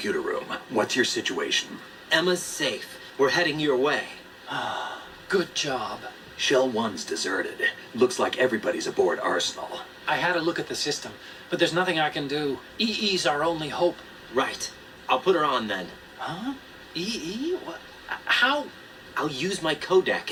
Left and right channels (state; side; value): identical; both; correlation 1.00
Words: room. What's your situation? Emma's safe. We're heading your way. Good job. Shell 1's deserted. Looks like everybody's aboard Arsenal. I had a look at the system, but there's nothing I can do. EE's our only hope. Right. I'll put her on then. Huh? EE? What? How? I'll use my